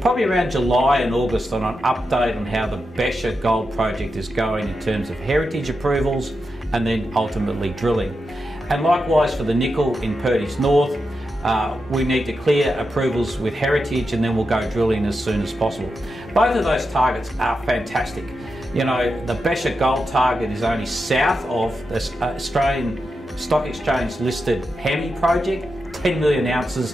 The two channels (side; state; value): both; normal; correlation 0.88